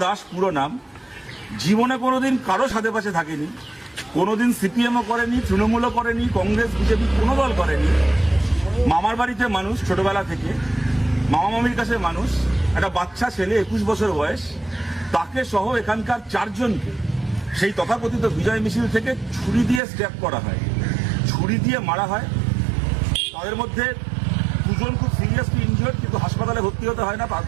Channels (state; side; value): drops out; left; at 19.8 s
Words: দাস পুরো নাম, জীবনে কোনোদিন কারো সাথে পাশে থাকেনি, কোনোদিন সিপিএমও করেনি, তৃণমূলও করেনি, কংগ্রেস বিজেপি কোনো দল করেনি, মামার বাড়িতে মানুষ ছোটবেলা থেকে, মামা মামির কাছে মানুষ, একটা বাচ্চা ছেলে 21 বছর বয়স, তাকে সহ এখানকার 4 জনকে সেই তথাকথিত বিজয় মিছিল থেকে ছুরি দিয়ে স্ট্যাপ করা হয়, ছুরি দিয়ে মারা হয়। তাদের মধ্যে 2 জন খুব সিরিয়াসলি ইনজিওর্ড, কিন্তু হাসপাতালে ভর্তি হতে হয় না,